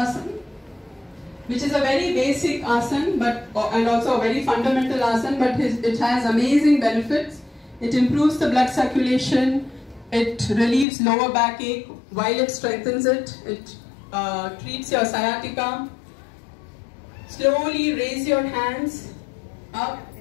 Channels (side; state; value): right; drops out; at 10.9 s